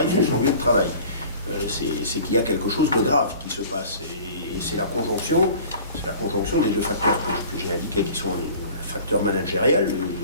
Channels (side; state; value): both; inverted; correlation -0.45